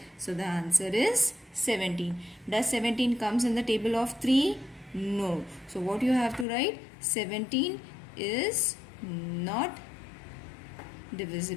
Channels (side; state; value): right; drops out; at 6.5 s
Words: So the answer is 17. Does 17 comes in the table of 3? No. So what you have to write? 17 is not